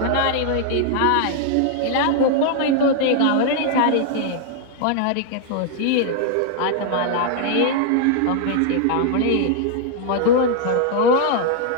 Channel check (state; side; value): different; both; correlation 0.00